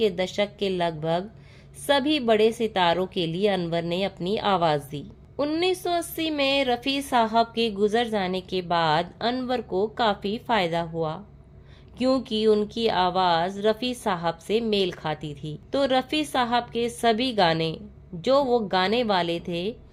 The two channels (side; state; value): both; identical; correlation 1.00